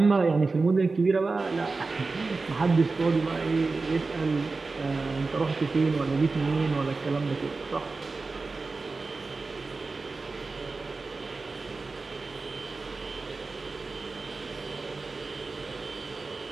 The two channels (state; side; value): quieter; left; 3.9 dB